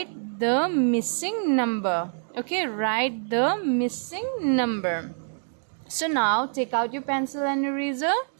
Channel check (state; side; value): silent; left; digital silence